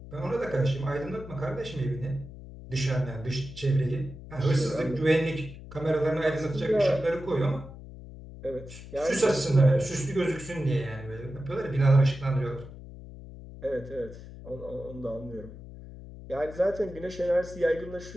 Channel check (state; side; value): noise; left; hum, 14 dB below the sound